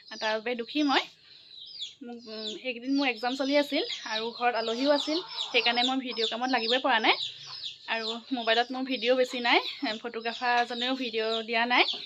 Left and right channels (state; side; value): identical; both; correlation 1.00